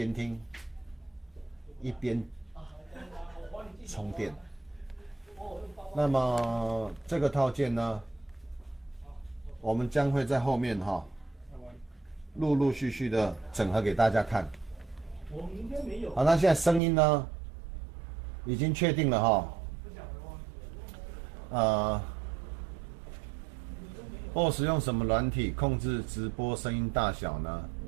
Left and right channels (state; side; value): drops out; left; at 16.8 s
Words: 听，一边充电。那么这个套件呢，我们将会在后面哈，陆陆续续的整合给大家看。好，那现在声音呢，已经确定了哈。BOSS 用什么软体控制直播声音大小呢